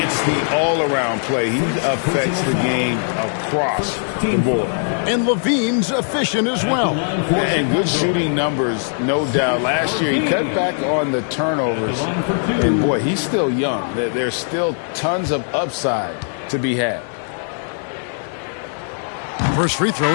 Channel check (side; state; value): right; silent; 66 dB below the other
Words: It's the all-around play. He affects the game across the board. And Levine's efficient as well. And good shooting numbers, no doubt. Last year, he cut back on the turnovers. And, boy, he's still young. There's still tons of upside to be had. First free throw